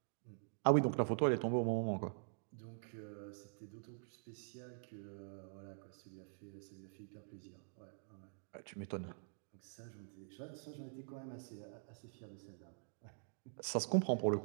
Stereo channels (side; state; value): left; silent; digital silence